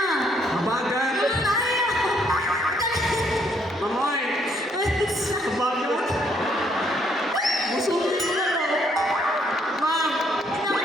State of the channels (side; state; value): both; normal; correlation 0.69